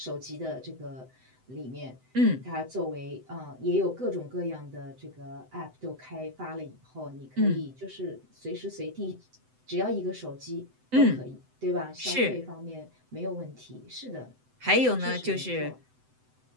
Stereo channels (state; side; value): late; left; 7.9 ms